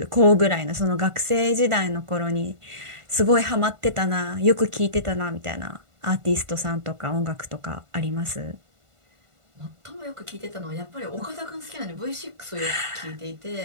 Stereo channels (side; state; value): left; late; 1.5 ms